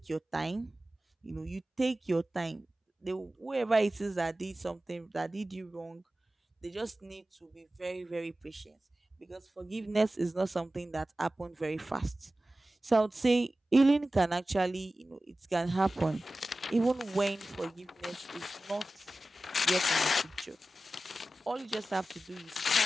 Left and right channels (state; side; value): normal; both; correlation 0.95